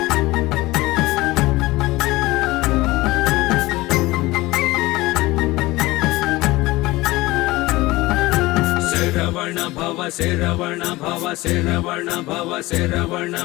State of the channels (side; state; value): right; quieter; 19.8 dB